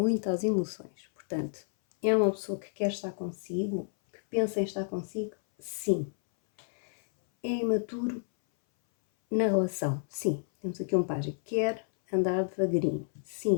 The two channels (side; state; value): right; silent; 58 dB below the other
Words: às emoções, portanto, é uma pessoa que quer estar consigo, que pensa em estar consigo, sim. É imaturo na relação, sim. Temos aqui um pajem. Quer andar devagarinho,